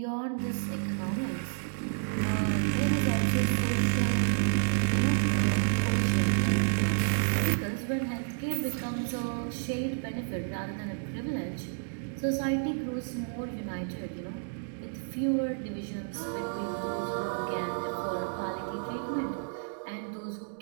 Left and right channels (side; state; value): left; silent; digital silence